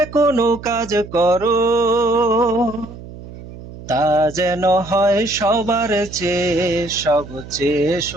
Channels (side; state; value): right; noise; hum, 15 dB below the sound